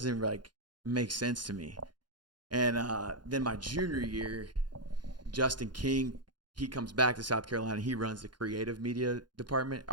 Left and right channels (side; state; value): left; late; 0.71 ms